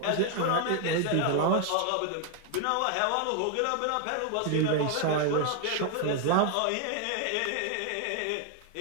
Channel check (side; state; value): both; different; correlation 0.00